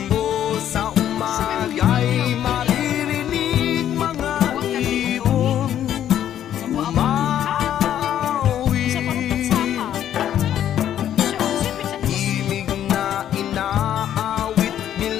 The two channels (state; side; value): quieter; right; 10.7 dB